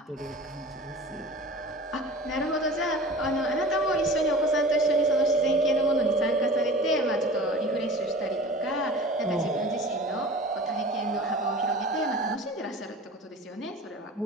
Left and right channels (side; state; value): both; normal; correlation 0.39